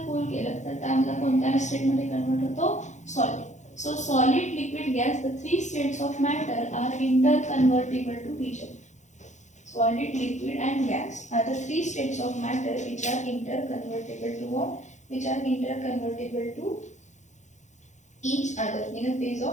कूल केलं तर त्यामध्ये कोणत्या स्टेटमध्ये कन्वर्ट होतो solid. So solid, liquid, gas, the 3 states of matter are interconvertible to each other. Solid, liquid and gas are the 3 states of matter which are interconvertible to what? Which are interconvertible to each other. In the phase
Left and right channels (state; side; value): late; right; 0.35 ms